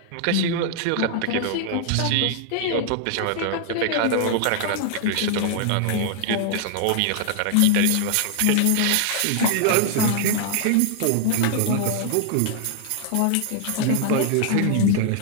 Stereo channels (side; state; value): both; different; correlation -0.01